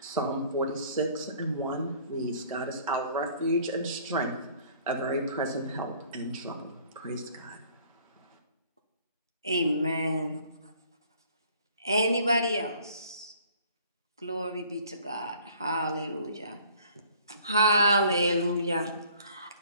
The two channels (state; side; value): inverted; both; correlation -0.56